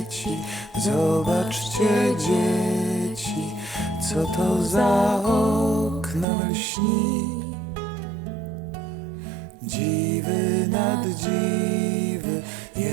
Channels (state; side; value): drops out; left; at 6.2 s